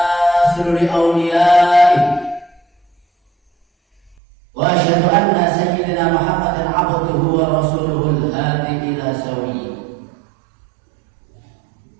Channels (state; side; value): drops out; left; at 4.2 s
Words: li awliyaihi wa asyhadu anna sayyidina Muhammadan 'abduhu wa rasuluhu al-hadi ila sawiyyi.